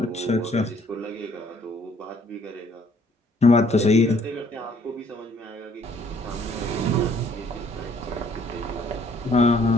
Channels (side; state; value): both; normal; correlation 0.62